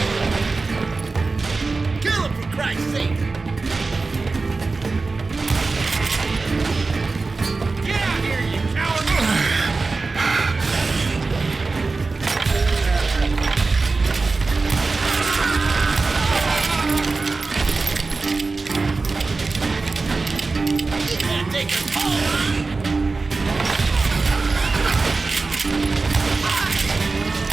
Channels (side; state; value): left; quieter; 3.9 dB